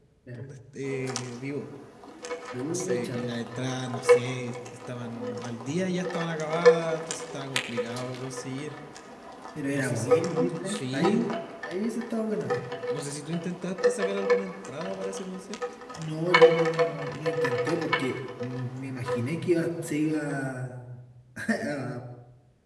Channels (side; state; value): both; identical; correlation 1.00